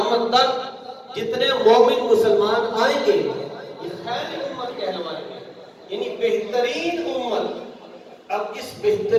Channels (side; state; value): both; identical; correlation 1.00